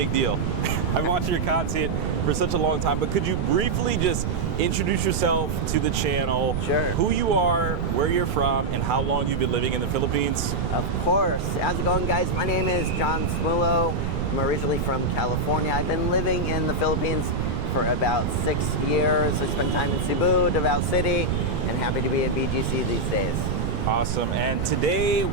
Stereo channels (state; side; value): noise; right; rumble, 1 dB below the sound